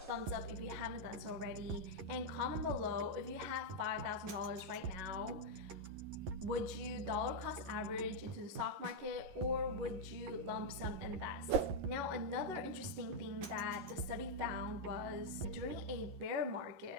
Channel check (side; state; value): left; late; 11 ms